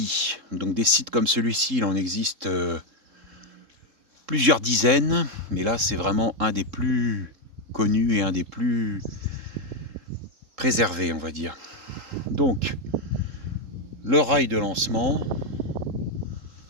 Donc des sites comme celui-ci, il en existe plusieurs dizaines, mais là c'est vraiment un des plus connus et un des plus préservés, on va dire. Donc le rail de lancement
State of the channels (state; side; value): late; left; 3.7 ms